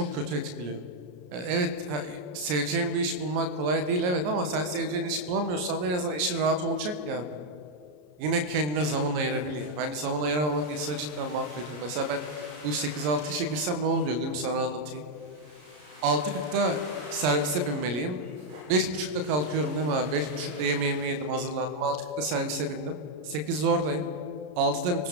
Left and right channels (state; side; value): late; left; 33 ms